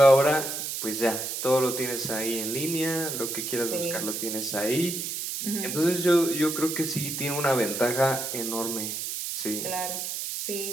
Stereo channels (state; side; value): noise; right; hiss, 4 dB below the sound